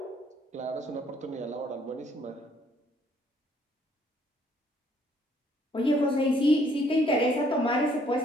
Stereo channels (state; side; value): normal; both; correlation 0.65